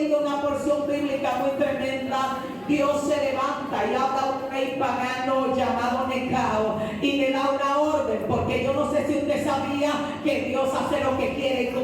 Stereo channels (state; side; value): identical; both; correlation 1.00